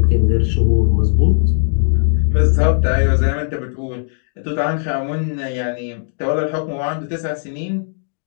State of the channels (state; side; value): silent; right; digital silence